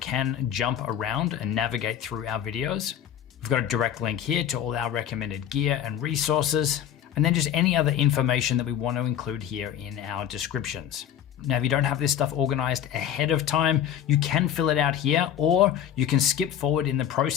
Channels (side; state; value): right; quieter; 9.9 dB